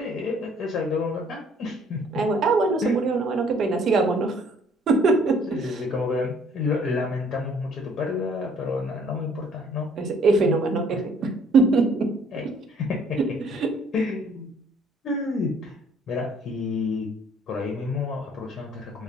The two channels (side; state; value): both; normal; correlation 0.60